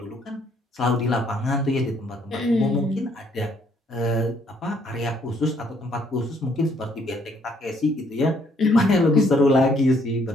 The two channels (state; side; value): normal; both; correlation 0.67